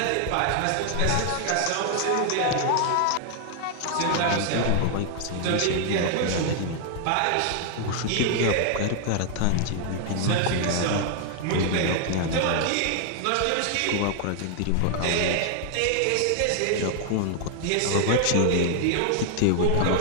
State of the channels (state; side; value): different; both; correlation 0.00